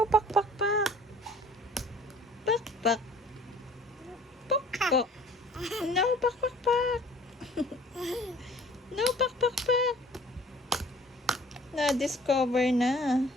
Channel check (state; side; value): normal; both; correlation 0.51